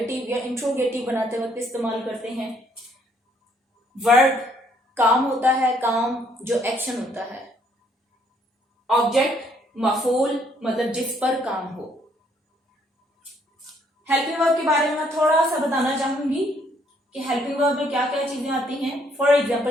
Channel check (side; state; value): both; normal; correlation 0.67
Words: या इंट्रोगेटिव बनाते वक्त इस्तेमाल करते हैं। वर्ड काम होता है, काम जो एक्शन होता है। ऑब्जेक्ट मफूल, मतलब जिस पर काम हो। हेल्पिंग वर्ब के बारे में मैं थोड़ा सा बताना चाहूंगी कि हेल्पिंग वर्ब में क्या क्या चीजें आती हैं। फॉर